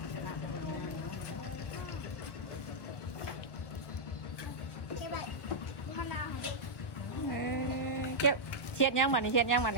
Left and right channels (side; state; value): right; late; 1.1 ms